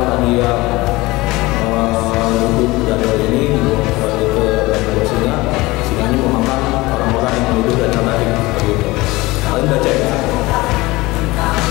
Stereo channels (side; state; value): right; quieter; 21.0 dB